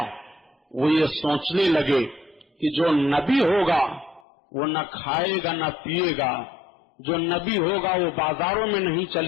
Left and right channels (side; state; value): right; drops out; at 4.2 s